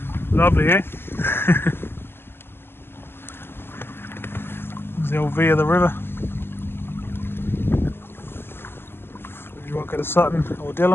Lovely, eh? There's the old V of the river. You won't go to Sutton or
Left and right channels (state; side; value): late; right; 0.11 ms